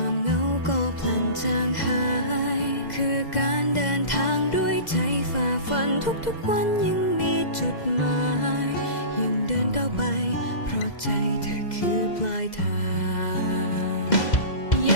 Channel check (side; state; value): right; late; 2.0 ms